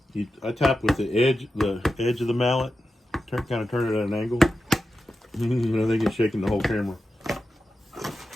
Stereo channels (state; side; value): normal; both; correlation 0.91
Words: I tap with the edge of the mallet. Kind of turn it at an angle. I think it's shaking the whole camera.